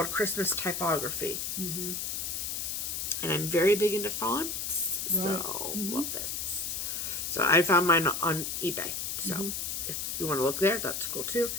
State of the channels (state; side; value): noise; left; hiss, 3 dB below the sound